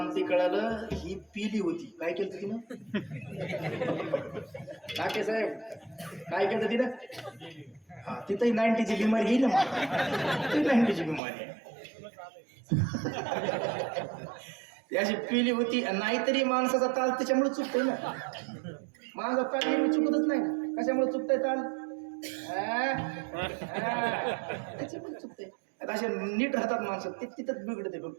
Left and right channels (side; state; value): left; drops out; at 11.2 s